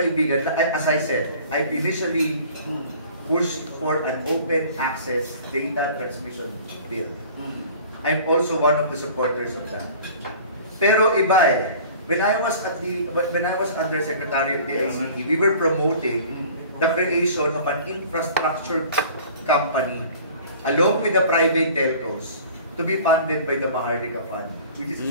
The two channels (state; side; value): inverted; both; correlation -0.46